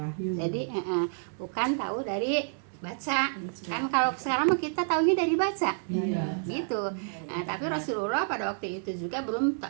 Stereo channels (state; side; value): silent; left; 58 dB below the other